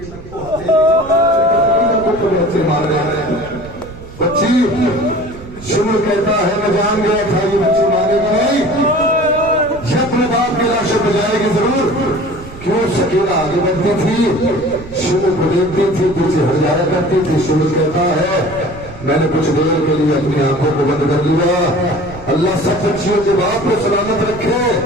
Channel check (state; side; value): noise; right; rumble, 16 dB below the sound